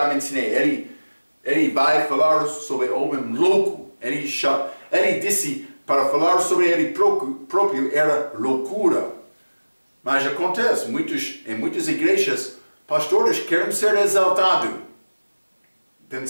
mencionei, ele vai falar sobre homem louco. Ele disse para falar sobre ele próprio era loucura. Mas acontece, em muitas igrejas, pastores querem ser exaltados,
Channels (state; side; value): inverted; both; correlation -1.00